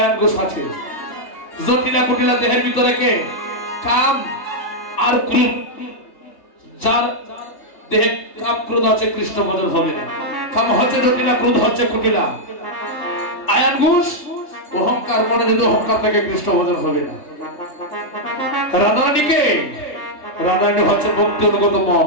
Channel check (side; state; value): right; late; 3.3 ms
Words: ঘোষ আছে। জটিলা কটিলা দেহের ভিতরে কে? কাম আর ক্রোধ। যার দেহে কাম ক্রোধ আছে কৃষ্ণ ভজন হবে না। কাম হচ্ছে জটিলা, ক্রোধ হচ্ছে কটিলা। আয়ান ঘোষ অহংকার, মনে যদি অহংকার থেকে কৃষ্ণ ভজন হবে না। রাধারানীকে, রাধারানী হচ্ছে ভক্তি অনুগত